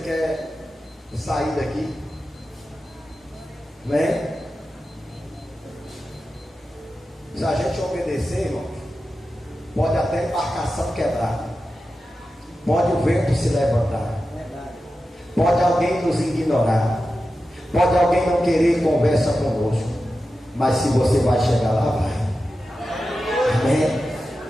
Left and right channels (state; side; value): normal; both; correlation 0.92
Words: quer sair daqui, né? Se a gente obedecer, irmão, pode até a embarcação quebrar, pode o vento se levantar, pode alguém nos ignorar, pode alguém não querer conversa conosco, mas se você vai chegar lá, vai. Amém?